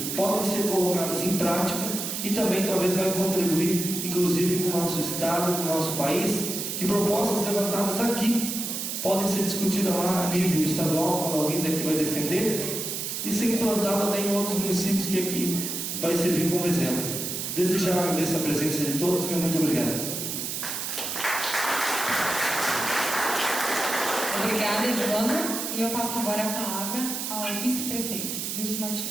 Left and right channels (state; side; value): noise; right; hiss, 4 dB below the sound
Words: podem ser colocadas em prática, e também talvez vai contribuir, inclusive com o nosso estado, com o nosso país, que propostas levantadas aqui, podem ser discutidas lá a nível estadual, quando alguém daqui vai defender, e ser implantada em outros municípios que aqui vai servir como exemplo. Desde já agradeço a presença de todos, meu muito obrigado. Obrigada, Edvando. E eu passo agora a palavra ao vice-prefeito, Wilson